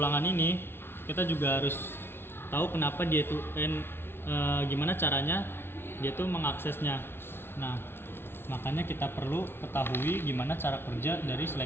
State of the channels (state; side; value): late; right; 0.11 ms